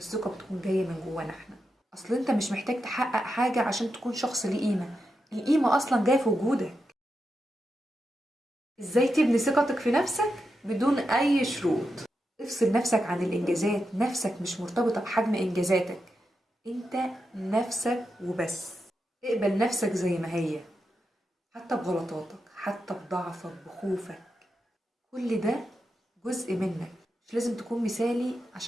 بتكون جاية من جوانا احنا. اصل انت مش محتاج تحقق حاجة عشان تكون شخص ليه قيمة، القيمة اصلا جاية في وجودك. ازاي تبني ثقتك في نفسك بدون اي شروط؟ افصل نفسك عن الانجازات، نفسك مش مرتبطة بحجم انجازاتك، انت نفسك وبس. اقبل نفسك زي ما هي، حتى بغلطاتك، حتى بضعفك، بخوفك، كل ده جزء منك. مش لازم تكون مثالي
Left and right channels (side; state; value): both; normal; correlation 0.87